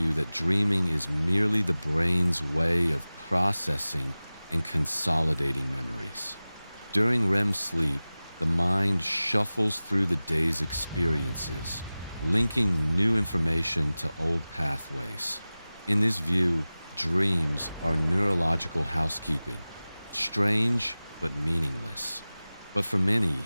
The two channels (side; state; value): both; inverted; correlation -0.98